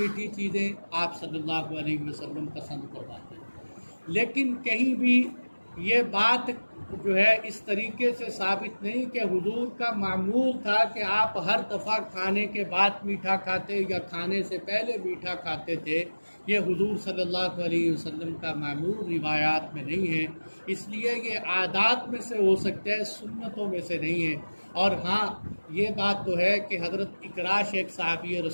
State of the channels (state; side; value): inverted; both; correlation -1.00